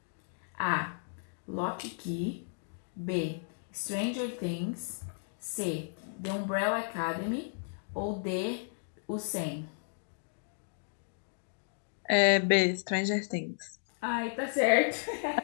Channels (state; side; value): silent; right; digital silence